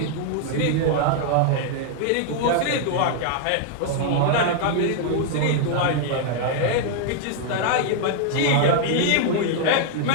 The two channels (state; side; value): different; both; correlation 0.00